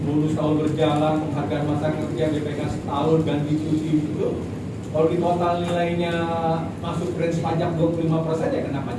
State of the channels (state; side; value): identical; both; correlation 1.00